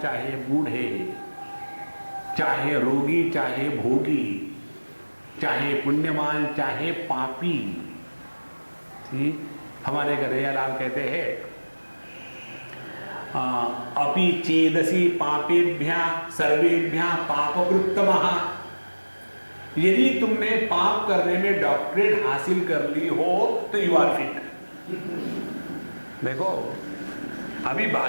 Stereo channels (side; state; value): both; inverted; correlation -1.00